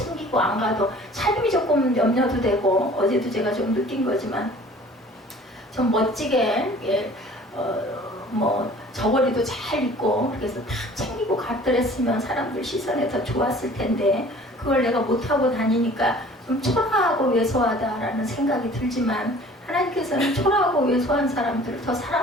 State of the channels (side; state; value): both; normal; correlation 0.49